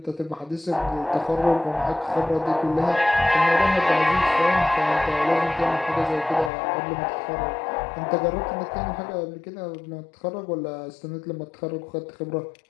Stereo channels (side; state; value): right; drops out; at 6.5 s